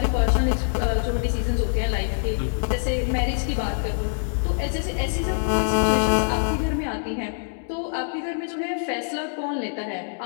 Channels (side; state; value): right; silent; digital silence